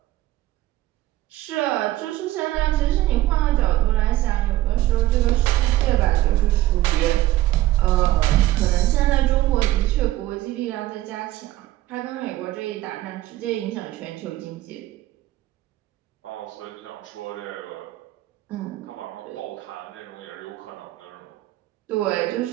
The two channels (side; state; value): left; quieter; 15.7 dB